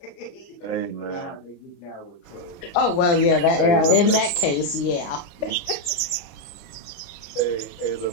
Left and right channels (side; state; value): right; late; 29 ms